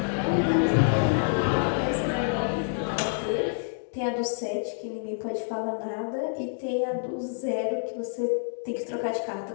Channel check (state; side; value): silent; right; digital silence